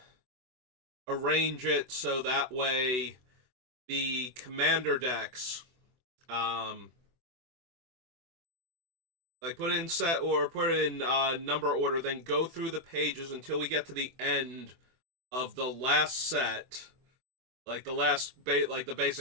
arrange it so that way the Commander decks um, like put it in set or put it in number order, then go through the pages until we get to the end of the last set, like like the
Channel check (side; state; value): left; late; 24 ms